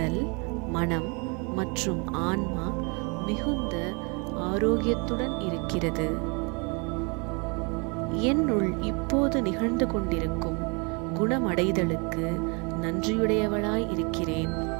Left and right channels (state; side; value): quieter; left; 32.2 dB